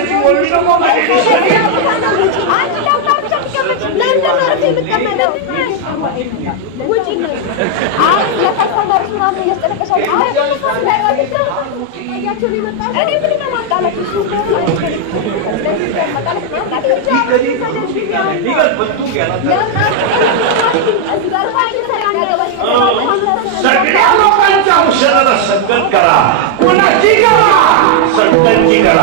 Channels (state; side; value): different; both; correlation 0.00